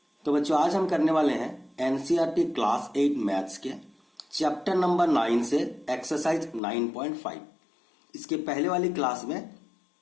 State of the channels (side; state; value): right; drops out; at 6.6 s